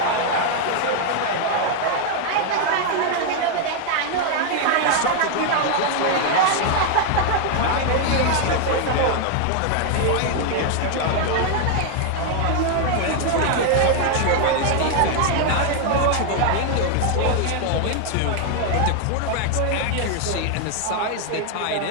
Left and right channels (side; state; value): both; different; correlation 0.00